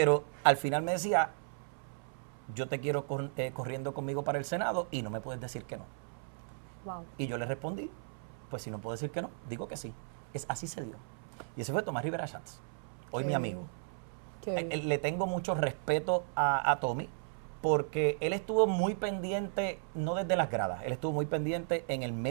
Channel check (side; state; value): left; silent; 54 dB below the other